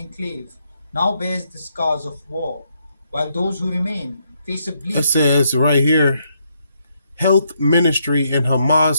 now bears the scars of war, while those who remain face a bleak... It says right here, Health Ministry in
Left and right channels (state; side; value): inverted; both; correlation -0.77